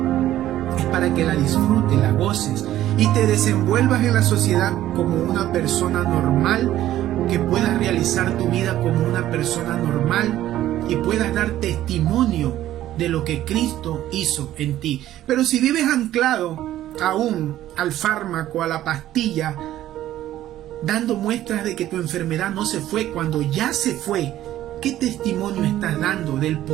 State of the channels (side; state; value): left; quieter; 13.4 dB